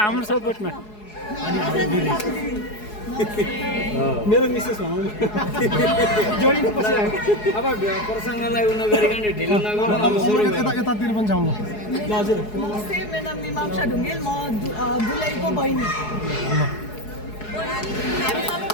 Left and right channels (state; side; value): late; right; 4.7 ms